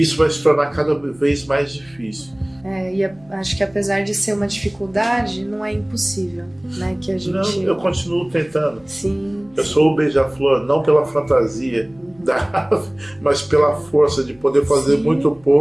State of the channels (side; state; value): left; noise; hum, 29 dB below the sound